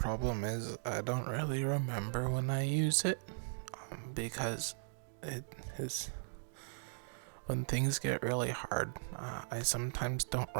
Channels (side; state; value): left; silent; digital silence